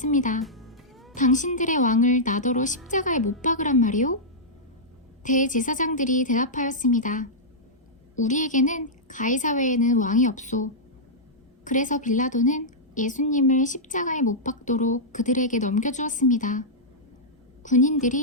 당신들의 왕을 나더러 십자가에 못 박으란 말이오? 대제사장들이 대답하였습니다. 우리에게는 가이사 외에는 왕이 없소. 그래서 빌라도는 예수님을 십자가에 못 박도록 그들에게 넘겨주었습니다.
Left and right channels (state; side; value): normal; both; correlation -0.11